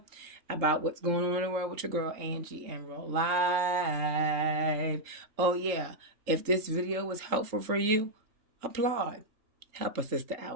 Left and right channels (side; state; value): left; late; 3.8 ms